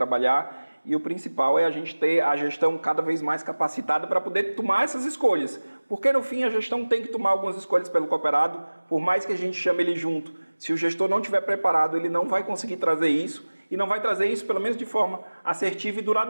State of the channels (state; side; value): inverted; both; correlation -1.00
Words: E o principal é a gente ter a gestão cada vez mais capacitada para poder tomar essas escolhas. Porque, no fim, a gestão tem que tomar algumas escolhas pelo cooperado, por mais que a gente chame ele junto. Se o gestor não estiver preparado, ele não vai conseguir trazer isso, e não vai trazer isso, pelo menos de forma assertiva e